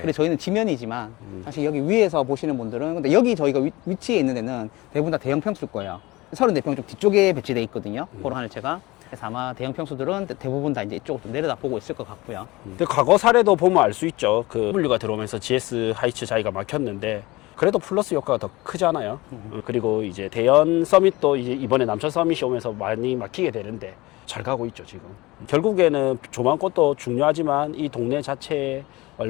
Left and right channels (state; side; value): quieter; right; 20.9 dB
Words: 그래 저희는 지면이지만 사실 여기 위에서 보시는 분들은 근데 여기 저희가 위치에 있는 데는 대부분 다 대형 평수일 거예요. 34평 좀 뒤쪽에 배치돼 있거든요. 코롱 하늘채가. 그래서 아마 대형 평수들은 대부분 다 이제 이쪽으로 좀 내려다 보고 있을 것 같고요. 근데 과거 사례도 보면 알 수 있죠. 그 W가 들어오면서 GS 하이츠 자리가 막혔는데 그래도 플러스 효과가 더 크잖아요. 그리고 이제 대연 서밋도 이제 이번에 남천 서밋이 오면서 많이 막히게 되는데 잘 가고 있죠, 지금. 결국에는 조망권도 중요하지만 이 동네 자체에